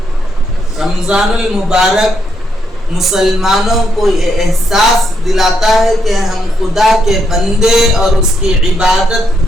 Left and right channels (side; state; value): both; normal; correlation 0.78